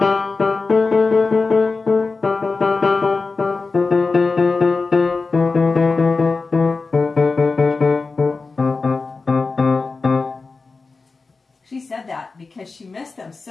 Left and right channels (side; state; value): right; quieter; 4.1 dB